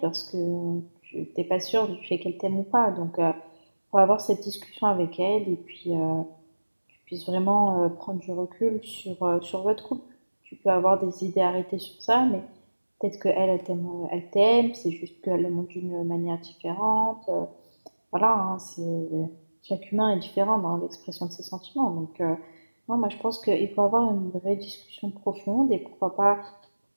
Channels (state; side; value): inverted; both; correlation -1.00